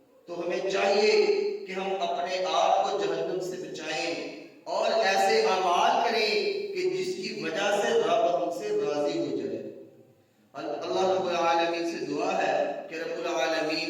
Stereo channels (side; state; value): both; identical; correlation 1.00